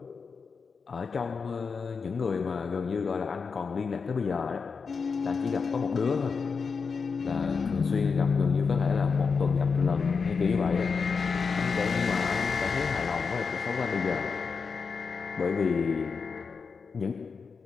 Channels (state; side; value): quieter; right; 5.2 dB